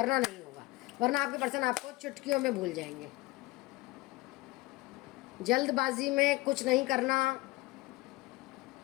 नहीं होगा, वरना आपके पर्सन आपको चुटकियों में भूल जाएंगे। जल्दबाजी में कुछ नहीं करना,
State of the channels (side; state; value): right; quieter; 21.3 dB